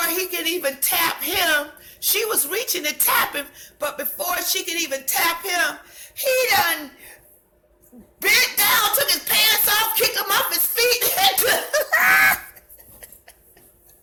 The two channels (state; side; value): identical; both; correlation 1.00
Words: he could even tap him, she was reaching to tap him, but before she could even tap him, he done bent down, took his pants off, kicked him off his feet.